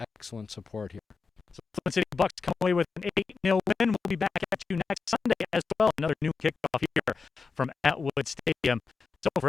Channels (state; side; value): quieter; right; 4.8 dB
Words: excellent support here. So Flint City Bucks come away with an 8-0 win. We'll be back at you next Sunday as well. Another new kickoff here from Atwood Stadium. So